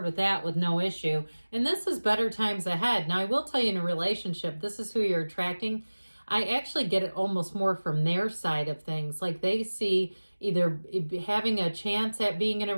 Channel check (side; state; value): both; inverted; correlation -1.00